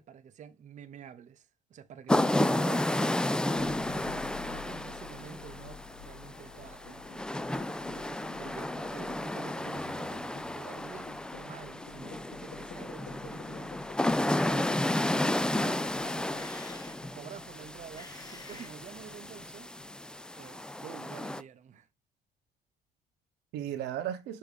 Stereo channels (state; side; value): normal; both; correlation 0.84